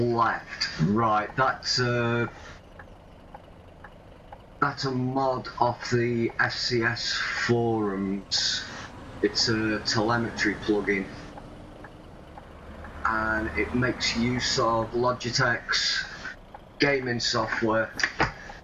Right, that's a mod off the FCS forums. It's a telemetry plugin, and it makes use of Logitech's gaming software,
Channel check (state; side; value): identical; both; correlation 1.00